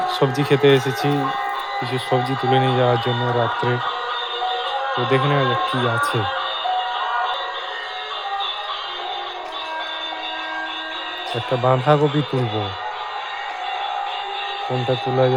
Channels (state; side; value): identical; both; correlation 1.00